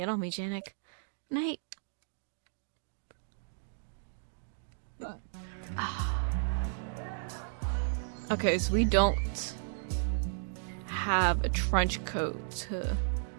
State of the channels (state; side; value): silent; left; digital silence